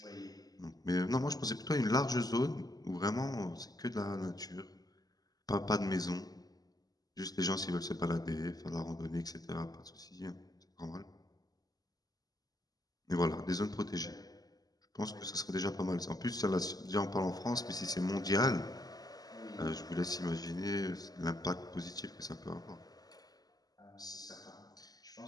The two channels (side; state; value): right; late; 0.18 ms